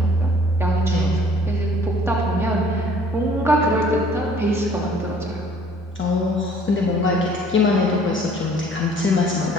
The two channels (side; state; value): both; normal; correlation 0.55